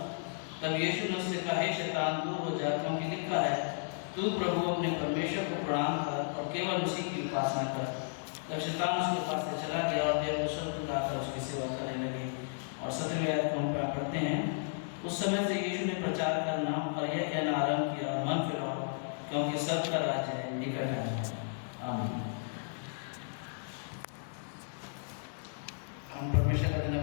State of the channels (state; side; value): silent; right; digital silence